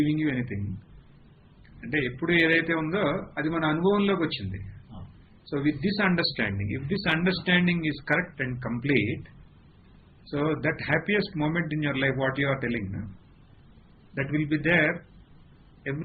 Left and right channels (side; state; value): both; identical; correlation 1.00